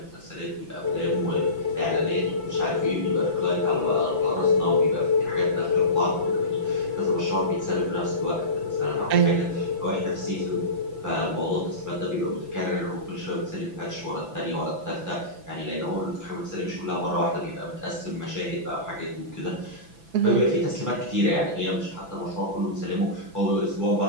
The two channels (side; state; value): left; late; 6.0 ms